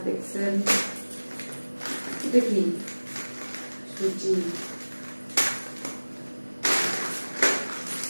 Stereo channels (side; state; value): both; inverted; correlation -1.00